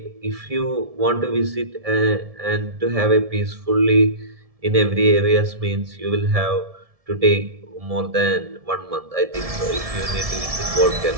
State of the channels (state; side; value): late; left; 1.7 ms